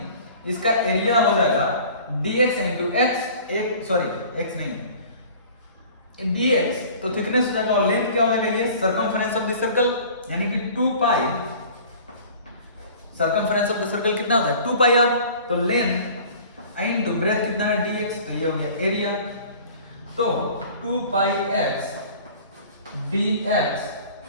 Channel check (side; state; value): both; inverted; correlation -0.46